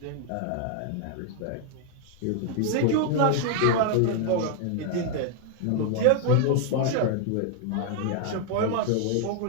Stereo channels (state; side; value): different; both; correlation 0.00